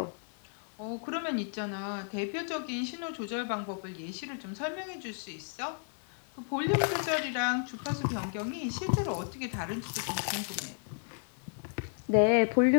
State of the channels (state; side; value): silent; right; 56 dB below the other